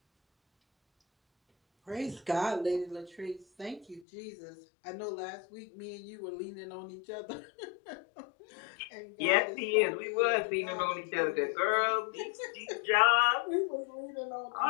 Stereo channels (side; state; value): right; drops out; at 4.0 s